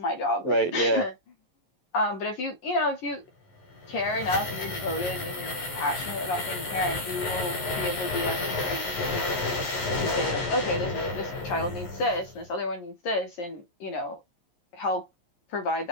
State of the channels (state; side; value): late; right; 11 ms